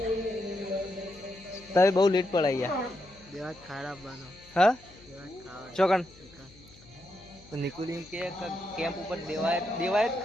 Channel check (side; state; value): left; noise; hum, 23 dB below the sound